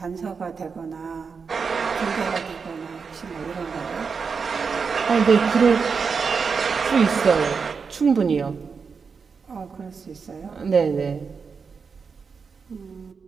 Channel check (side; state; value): left; quieter; 5.5 dB